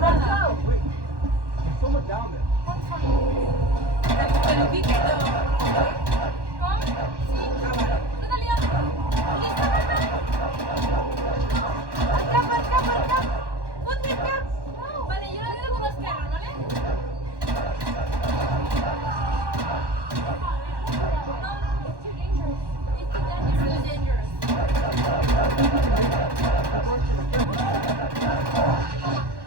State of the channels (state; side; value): late; left; 1.1 ms